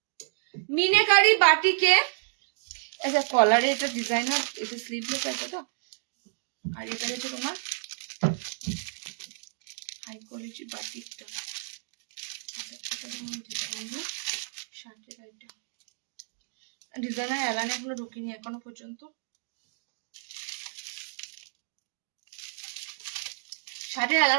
মিনেকারি বাটিকে, আচ্ছা কলারে এটা ডিজাইনার, এটা স্লিভলেস আছে তো, আর এটা হচ্ছে তোমার হাই কোয়ালিটি বাটিকটা। আচ্ছা, এটা তোমার ডিজাইনার শার্টের আইটেম, ডিজাইনার এলানে এখনো ঢুকিনি এখনো পর্যন্ত। শার্টের এলান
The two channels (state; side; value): silent; left; digital silence